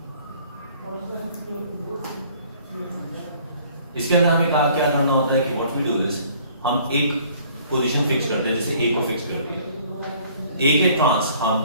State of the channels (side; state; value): both; inverted; correlation -0.56